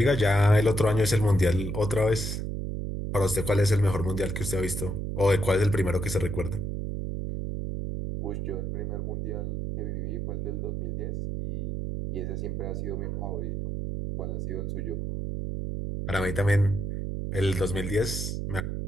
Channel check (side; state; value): right; noise; hum, 3 dB below the sound